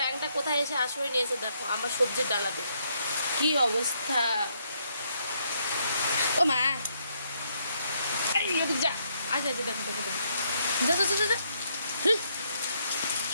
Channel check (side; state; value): both; inverted; correlation -0.73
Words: কোথায় এসে আশ্রয় নিয়েছে দেখো আমার সবজির ডালাতে। কি অবস্থা। ও মা, যা আচ্ছা আচ্ছা, দেখো দেখো দেখো, যা যা যা যা।